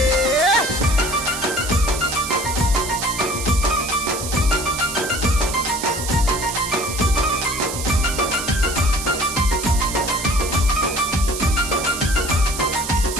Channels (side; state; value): right; noise; hiss, 6 dB below the sound